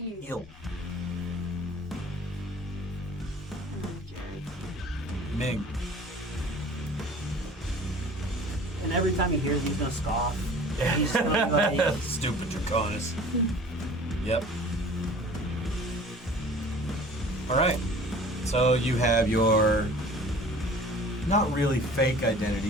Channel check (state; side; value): normal; both; correlation 0.46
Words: Eel. And then Jerry. Ming. And every time he hears, he's gonna scoff. He's gonna be like, Stupid Draconis. Yep. All right. So you have your not really fake